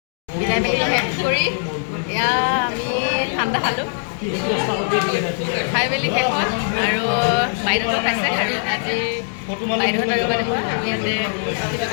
বিদায় মেলি শেষ কৰি এয়া আমি ঠাণ্ডা খালোঁ, খাই মেলি শেষ হ'ল আৰু বাইদেউহঁতেও খাইছে আৰু আজি বাইদেউহঁত আৰু মানে আমি ইয়াতে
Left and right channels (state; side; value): silent; right; 61 dB below the other